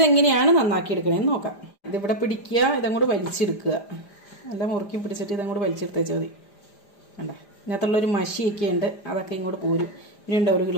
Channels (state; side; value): late; right; 5.0 ms